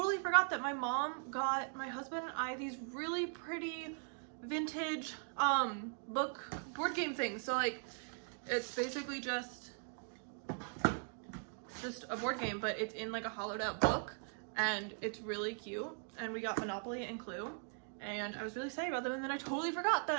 forgot that my mom got my husband and I these really pretty vintage board game things. So like it's basically just a board game, but it's in like a hollowed out book and it's really cute. And we got Monopoly and Clue, and I was really excited about them, and then I totally forgot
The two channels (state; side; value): silent; left; 51 dB below the other